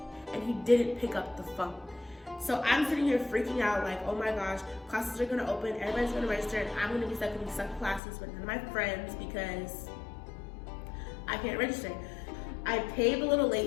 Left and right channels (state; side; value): drops out; right; at 8.0 s